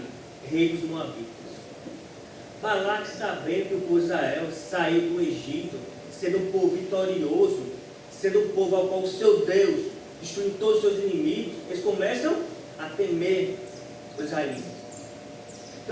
rei dos Moabitas. Balaque, sabendo que o povo de Israel saiu do Egito, sendo um povo vitorioso, sendo um povo ao qual o seu Deus destruiu todos os seus inimigos, eles começam a temer os israelitas.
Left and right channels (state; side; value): identical; both; correlation 1.00